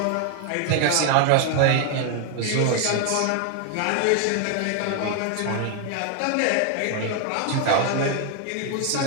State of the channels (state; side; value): different; both; correlation 0.00